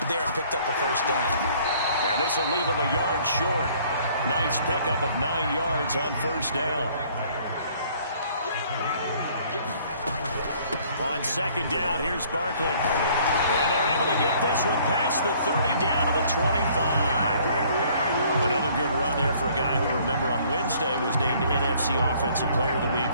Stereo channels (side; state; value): both; inverted; correlation -0.58